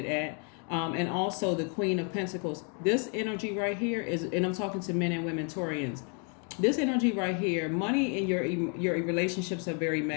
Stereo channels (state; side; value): quieter; right; 39.2 dB